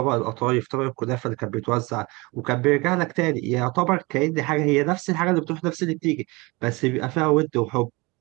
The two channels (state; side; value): quieter; left; 25.0 dB